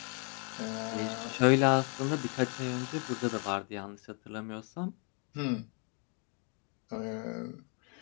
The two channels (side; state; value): right; quieter; 36.5 dB